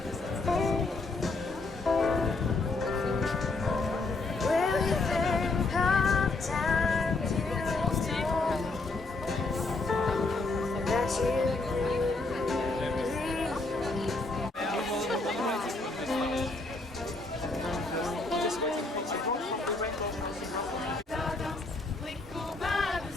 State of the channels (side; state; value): right; quieter; 3.4 dB